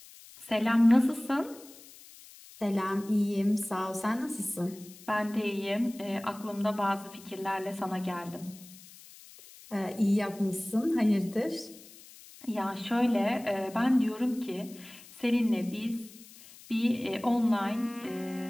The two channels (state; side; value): noise; left; hiss, 20 dB below the sound